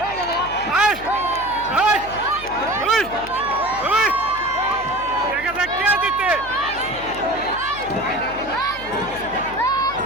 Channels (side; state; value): left; noise; hum, 16 dB below the sound